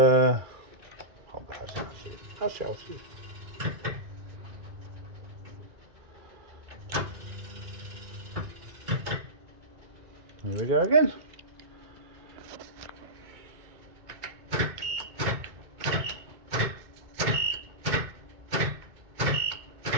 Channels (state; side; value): late; left; 2.3 ms